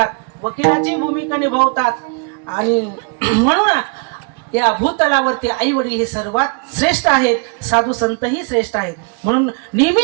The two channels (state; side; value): quieter; left; 35.9 dB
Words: वकिलाची भूमिका निभावतात. आणि म्हणून या भूतलावरती आई वडील हे सर्वात श्रेष्ठ आहेत, साधू संत ही श्रेष्ठ आहेत. म्हणून